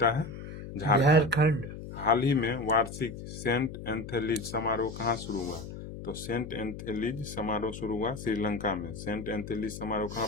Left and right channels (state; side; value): noise; left; hum, 10 dB below the sound